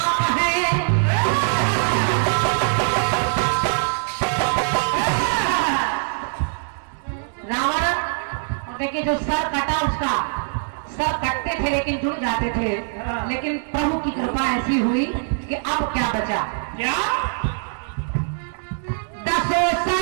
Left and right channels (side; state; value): left; silent; 64 dB below the other